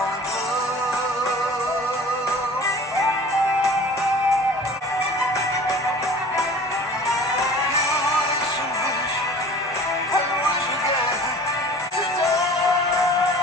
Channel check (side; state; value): both; normal; correlation 0.44